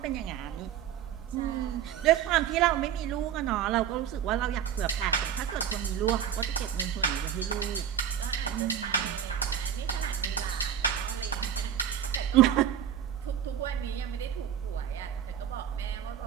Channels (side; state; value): left; quieter; 9.1 dB